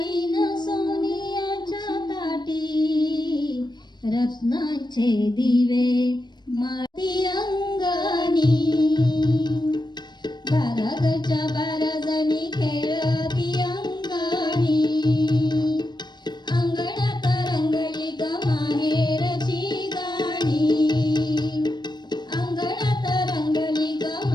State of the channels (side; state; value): right; late; 0.21 ms